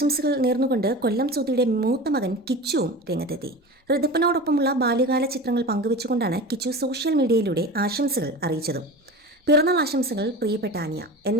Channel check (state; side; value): normal; both; correlation 0.32